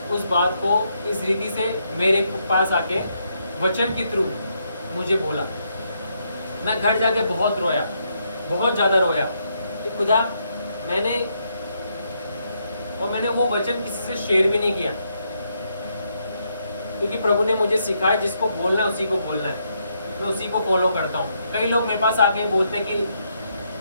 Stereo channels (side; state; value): both; inverted; correlation -0.77